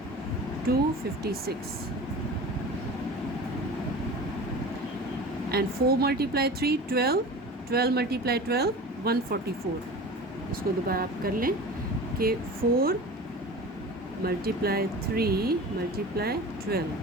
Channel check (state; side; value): normal; both; correlation 0.36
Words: and 4 multiply 3 12, 12 multiply 12 144। इसको दोबारा आप कर लें कि 4 multiply 3 multiply 12